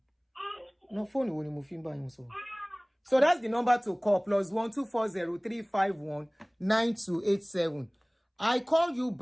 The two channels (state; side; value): identical; both; correlation 1.00